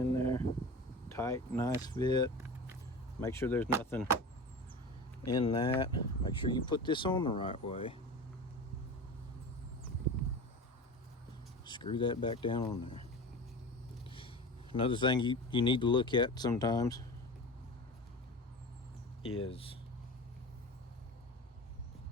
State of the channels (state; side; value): normal; both; correlation 0.31